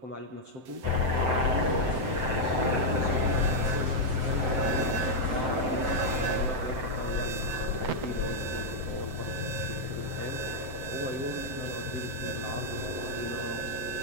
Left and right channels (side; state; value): left; late; 7.8 ms